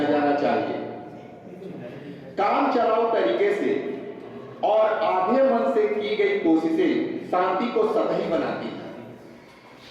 जाना चाहिए। काम चलाओ तरीके से और आधे मन से की गई कोशिशें शांति को सतही बनाती हैं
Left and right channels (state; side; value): identical; both; correlation 1.00